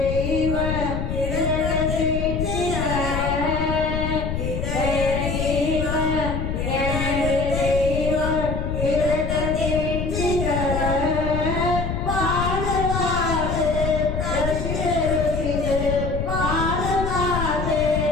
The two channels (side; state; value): left; noise; rumble, 2 dB below the sound